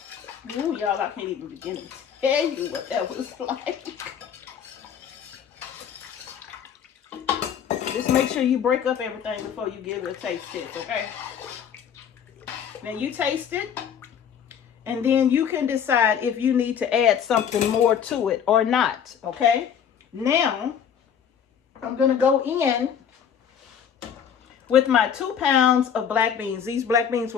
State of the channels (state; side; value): quieter; right; 8.1 dB